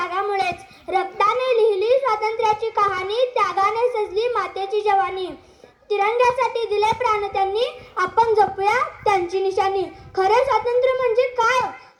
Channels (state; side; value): identical; both; correlation 1.00